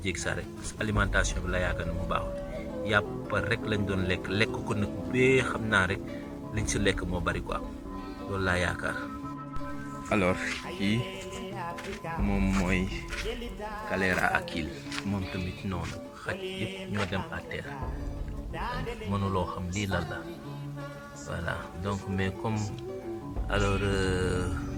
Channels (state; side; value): identical; both; correlation 1.00